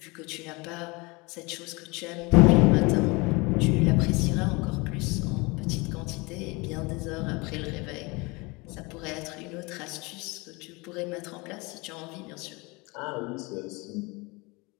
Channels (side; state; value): right; quieter; 26.2 dB